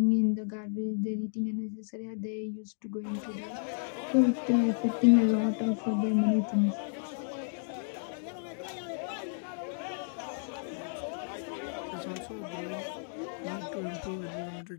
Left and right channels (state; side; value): silent; right; digital silence